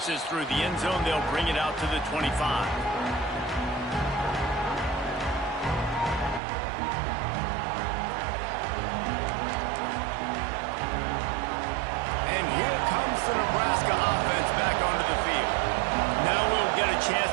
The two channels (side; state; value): left; drops out; at 6.4 s